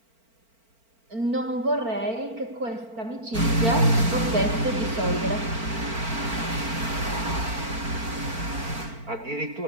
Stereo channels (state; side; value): late; left; 4.4 ms